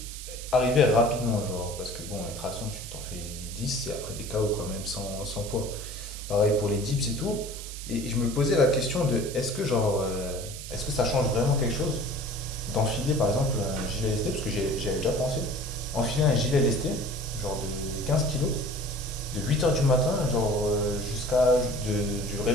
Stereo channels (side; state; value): right; noise; hiss, 11 dB below the sound